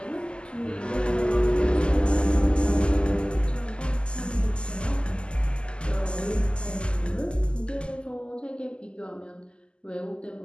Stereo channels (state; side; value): late; right; 0.050 ms